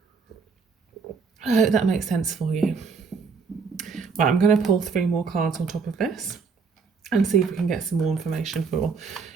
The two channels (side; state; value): left; quieter; 5.2 dB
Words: I hope that makes sense for you. Right, I'm going to pull 3 more cards on top of this and see if we can get some more information for